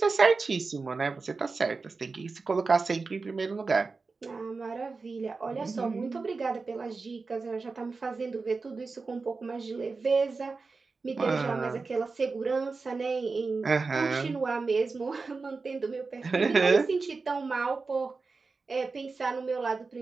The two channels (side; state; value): left; quieter; 4.2 dB